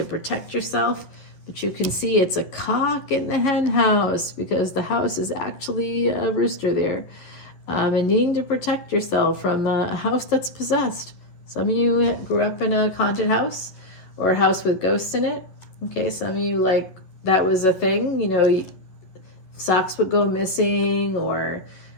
protect yourself, but you can see it's a cock in the hen house because the house is actually a rooster there. And needing to protect yourself from a house that's possessed. Some of you grew up in a haunted house or a house with ghosts in it. Okay, some of you, like, that was a thing, you know, socks would go missing, or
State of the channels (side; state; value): right; late; 11 ms